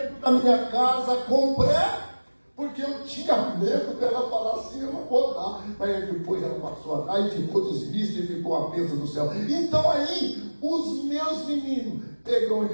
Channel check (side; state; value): both; inverted; correlation -1.00